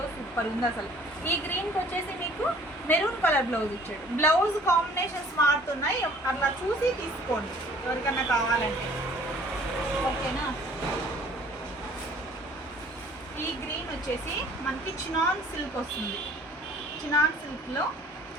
సూపర్ ఉంది అసలు. ఈ గ్రీన్కి వచ్చేసి మీకు మెరూన్ కలర్ బ్లౌజ్ ఇచ్చాడు. బ్లౌజ్ కాంబినేషన్స్ మారుతున్నాయి, అట్లా చూసి తీసుకోండి ఎవరికన్నా కావాలంటే. ఓకేనా? ఈ గ్రీన్ వచ్చేసి మనకి చినాన్ సిల్క్ వస్తుంది. చినాన్ సిల్క్లో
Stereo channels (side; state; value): both; normal; correlation 0.54